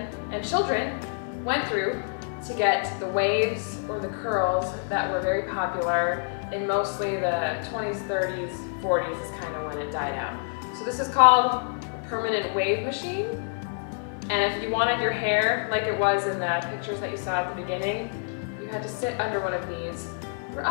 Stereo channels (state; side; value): silent; right; 60 dB below the other